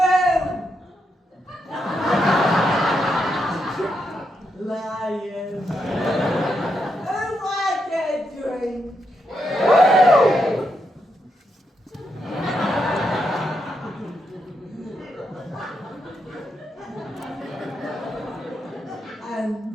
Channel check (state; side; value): normal; both; correlation 0.82